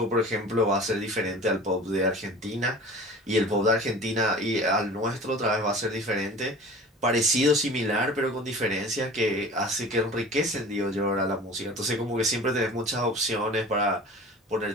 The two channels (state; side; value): normal; both; correlation 0.41